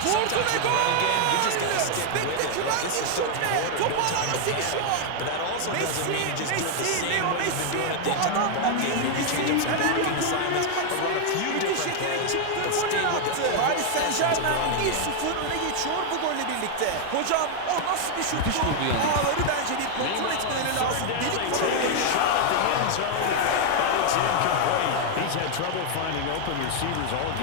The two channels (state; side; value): different; both; correlation 0.00